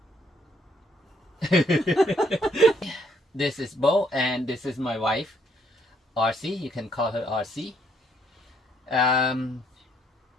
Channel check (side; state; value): both; normal; correlation 0.69